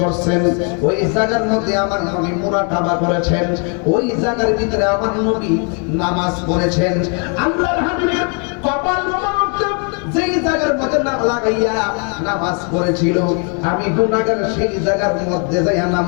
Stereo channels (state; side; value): quieter; right; 38.5 dB